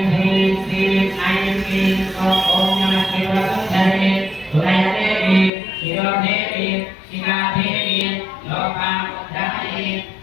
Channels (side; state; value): right; drops out; at 5.5 s